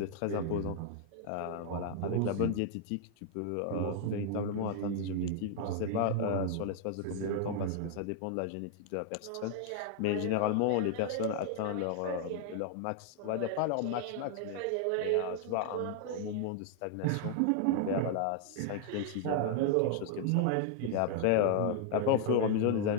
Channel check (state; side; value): different; both; correlation 0.00